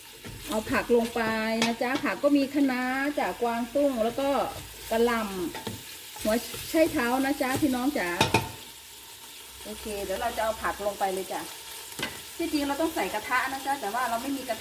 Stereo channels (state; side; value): identical; both; correlation 1.00